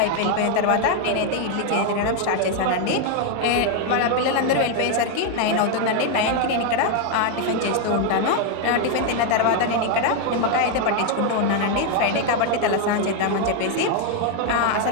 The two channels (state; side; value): different; both; correlation 0.01